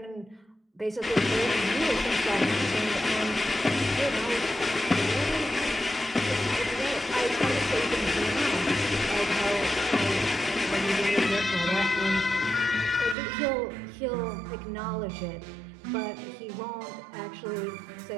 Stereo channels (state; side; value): drops out; left; at 13.2 s